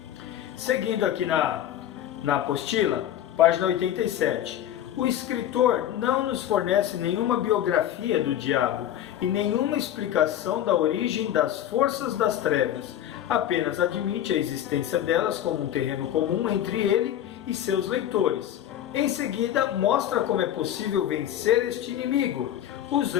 Seguindo aqui na apostila, página 87. O escritor não nos fornece nenhuma biografia do diabo e nenhuma explicação da origem das forças das trevas. Apenas admite a existência delas como um terreno comum entre ele e seus leitores. Em seguida, mostra como é possível vencer este inimigo,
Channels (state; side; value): quieter; right; 11.3 dB